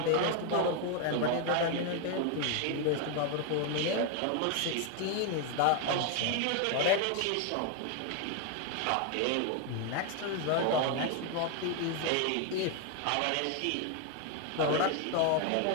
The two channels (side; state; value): both; different; correlation 0.01